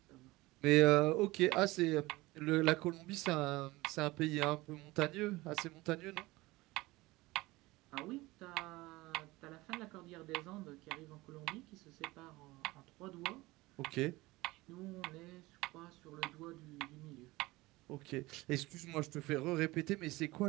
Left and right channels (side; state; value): left; quieter; 20.5 dB